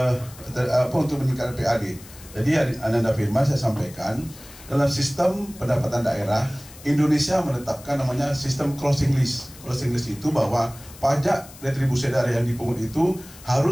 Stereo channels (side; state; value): left; noise; hiss, 19 dB below the sound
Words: untuk meningkatkan PAD. Jadi Ananda Firman saya sampaikan, dalam sistem pendapatan daerah Indonesia menetapkan namanya sistem closing list. Closing list itu bahwa pajak retribusi daerah yang dipungut itu